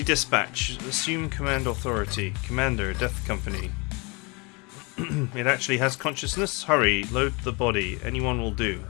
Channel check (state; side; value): quieter; right; 29.0 dB